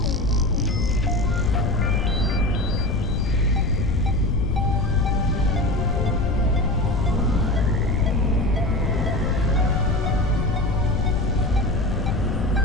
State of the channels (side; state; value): left; noise; rumble, 2 dB below the sound